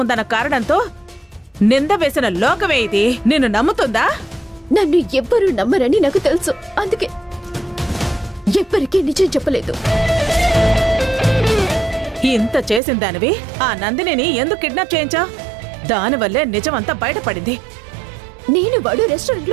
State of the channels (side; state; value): left; drops out; at 12.8 s